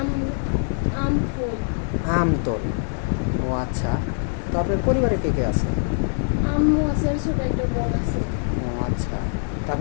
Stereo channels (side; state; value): right; silent; digital silence